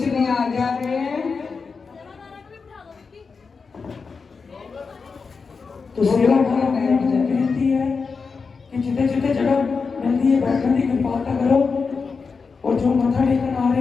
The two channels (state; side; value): quieter; right; 5.0 dB